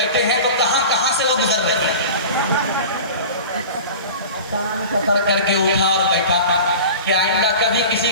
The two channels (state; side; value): inverted; both; correlation -0.36